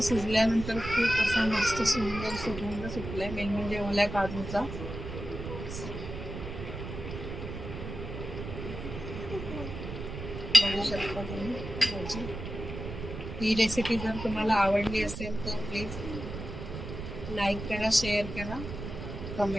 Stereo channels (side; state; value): right; noise; rumble, 8 dB below the sound